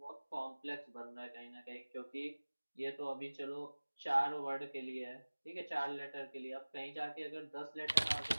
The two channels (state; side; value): inverted; both; correlation -1.00